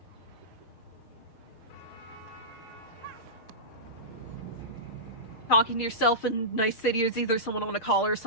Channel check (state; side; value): late; right; 6.5 ms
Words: talking to yourself in Night City is either someone on a call or